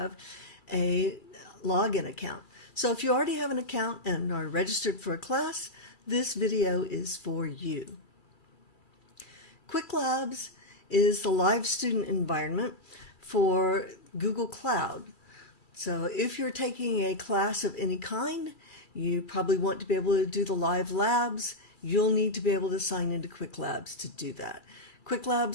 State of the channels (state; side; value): late; right; 2.3 ms